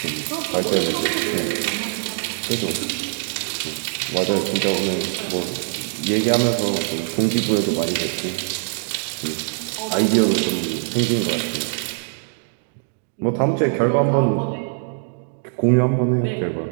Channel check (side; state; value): left; silent; digital silence